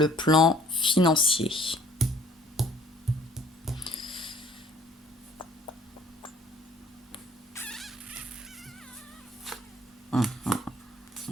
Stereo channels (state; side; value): normal; both; correlation 0.56